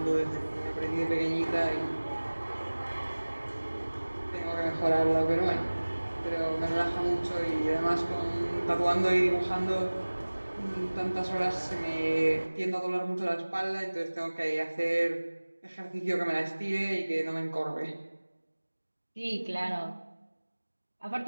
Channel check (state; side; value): inverted; both; correlation -1.00